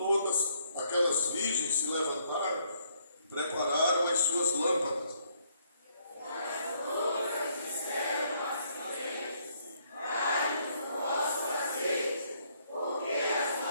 aquelas virgens se levantaram e prepararam as suas lâmpadas.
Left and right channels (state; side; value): inverted; both; correlation -0.69